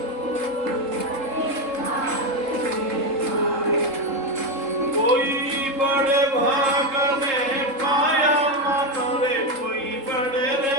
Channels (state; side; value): late; left; 3.7 ms